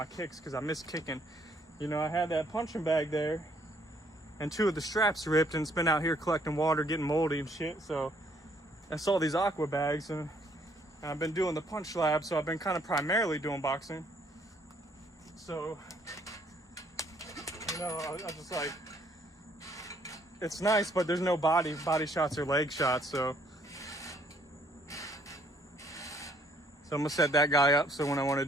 kicks, because I miss kicking. You know, I had that punching bag there, and 2 of the straps ripped, and it's been out here collecting water, getting moldy and shit. So I saw these aqua bags, and I've been doing the punch lab, so I've been kind of primarily doing boxing. So, you know, I just like, it's nice, but there's no body shots or leg shots, so I'm gonna set that guy up so when I want to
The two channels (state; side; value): normal; both; correlation 0.65